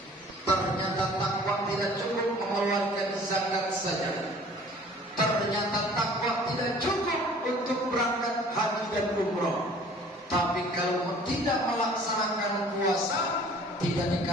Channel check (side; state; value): both; normal; correlation 0.51